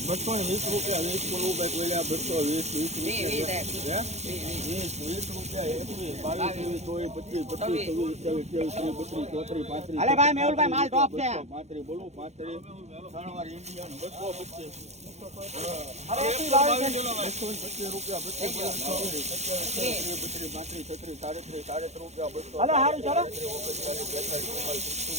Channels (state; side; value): late; left; 0.32 ms